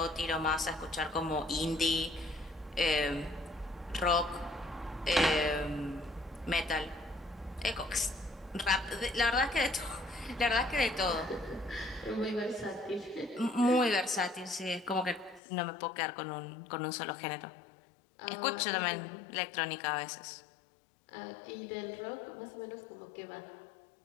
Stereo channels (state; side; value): drops out; right; at 15.4 s